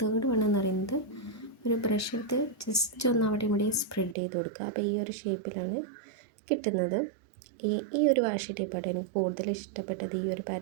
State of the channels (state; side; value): drops out; left; at 4.2 s